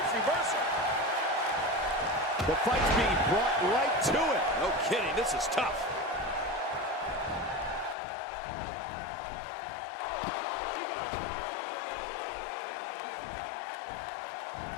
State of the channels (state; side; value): drops out; right; at 8.0 s